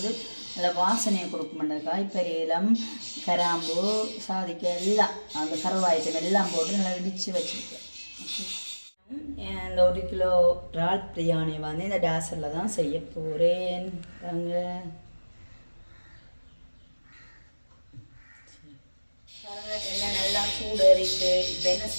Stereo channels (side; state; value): both; inverted; correlation -1.00